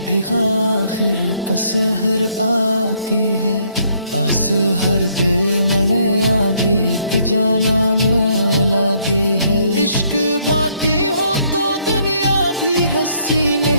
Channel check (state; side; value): inverted; both; correlation -0.68